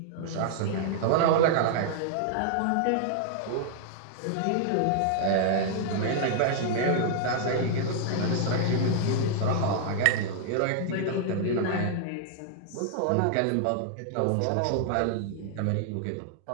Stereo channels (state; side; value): different; both; correlation -0.01